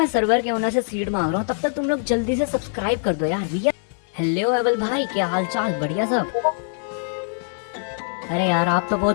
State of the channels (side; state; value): right; silent; 63 dB below the other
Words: सर्वर के ओनर से सीड मांग रहा हूँ तब तक तुम लोग जल्दी से सब्सक्राइब कर दो यार भैया। हेलो एवल भाई, क्या हाल चाल? बढ़िया सब? अरे यार आप तो